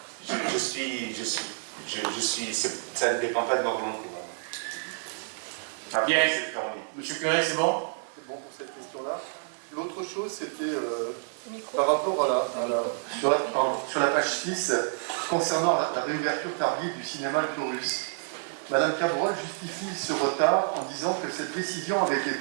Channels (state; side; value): silent; left; digital silence